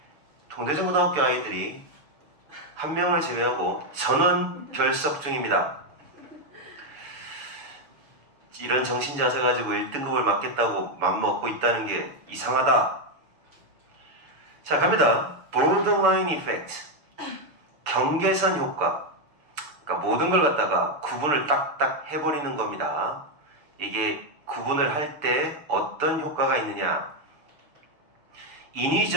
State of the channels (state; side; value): late; left; 6.8 ms